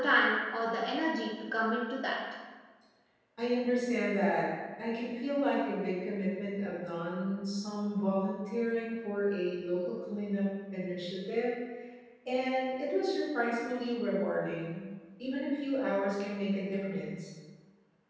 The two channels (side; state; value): both; identical; correlation 1.00